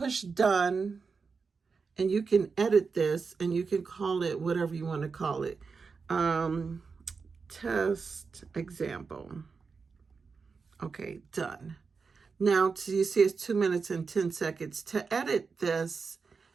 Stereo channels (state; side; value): quieter; left; 5.0 dB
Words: done and you can edit this and you can call it whatever you want to call it. Test example. Okay, done. Now, you see it's 2 minutes and 10 seconds. To edit this,